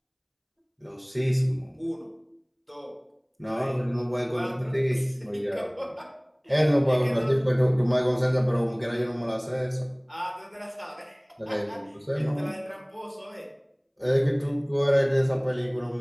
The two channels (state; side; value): identical; both; correlation 1.00